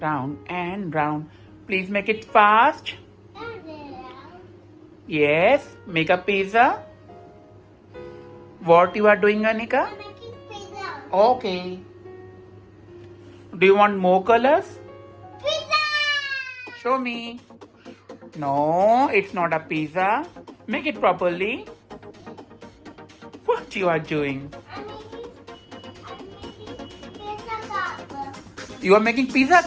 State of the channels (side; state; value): both; identical; correlation 1.00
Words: and round. Please make it fast. Yes, make a pizza. What you are doing, Anika? I'm making pizza. Okay. Do you want more colors? Pizza. Show me. No, it's not a pizza. Make it properly. What you are doing? I'm making pizza cup. You are making pizza